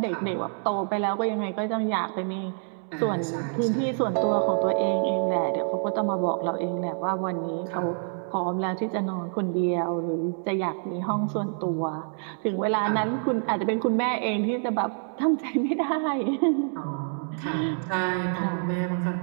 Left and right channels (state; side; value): silent; left; 60 dB below the other